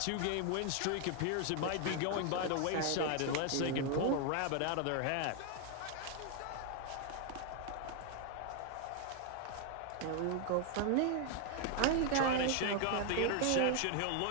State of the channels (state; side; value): different; both; correlation 0.01